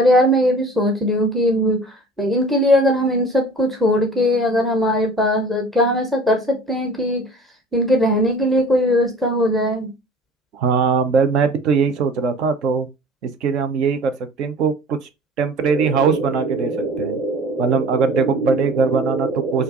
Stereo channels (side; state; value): both; normal; correlation 0.45